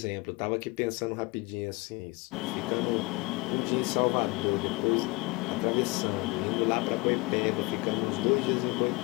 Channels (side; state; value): right; quieter; 25.3 dB